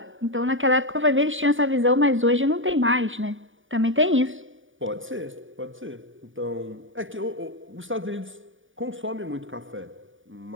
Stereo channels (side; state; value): left; late; 0.57 ms